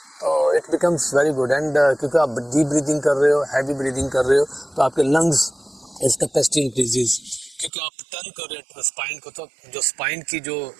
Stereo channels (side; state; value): left; drops out; at 7.7 s